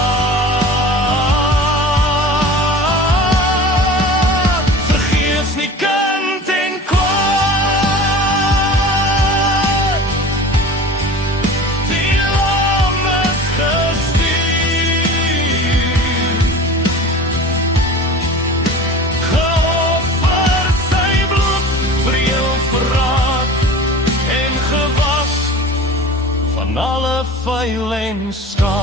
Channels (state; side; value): normal; both; correlation 0.38